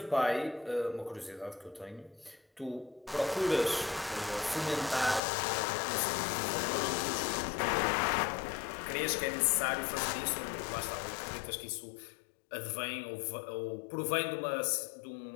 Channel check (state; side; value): drops out; right; at 5.2 s